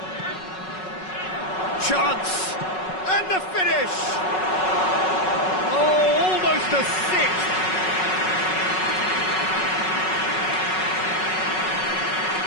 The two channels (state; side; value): late; right; 5.4 ms